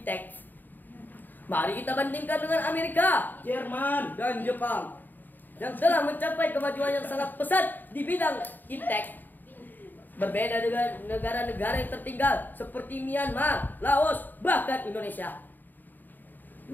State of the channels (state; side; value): late; right; 0.089 ms